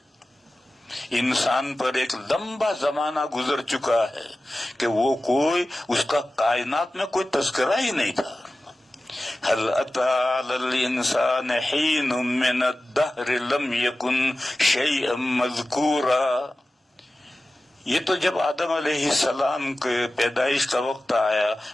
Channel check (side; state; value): both; normal; correlation 0.95